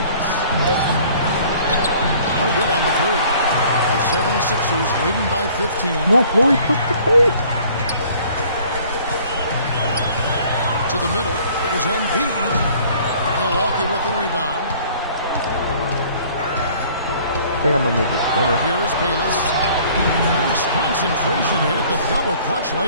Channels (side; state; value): both; inverted; correlation -0.54